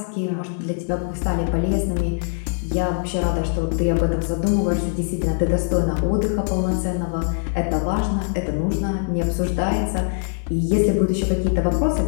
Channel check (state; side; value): silent; right; digital silence